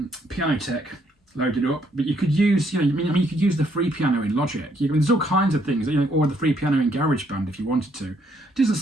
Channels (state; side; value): normal; both; correlation 0.70